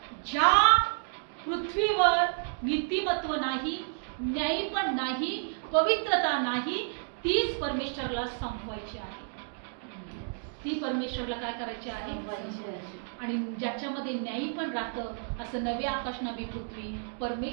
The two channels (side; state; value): left; silent; digital silence